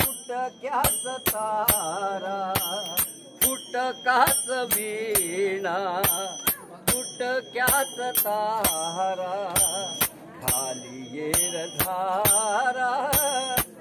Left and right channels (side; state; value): both; identical; correlation 1.00